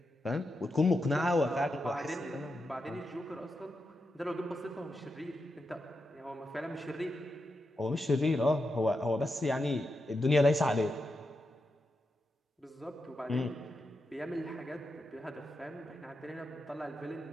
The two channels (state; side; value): normal; both; correlation 0.87